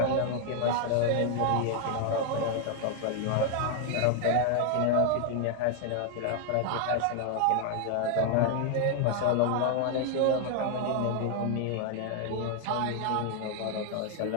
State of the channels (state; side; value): different; both; correlation 0.00